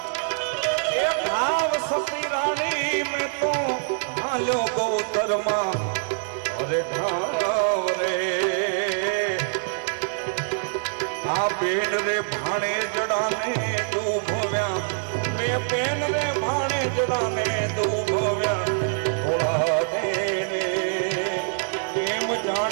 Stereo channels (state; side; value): silent; left; digital silence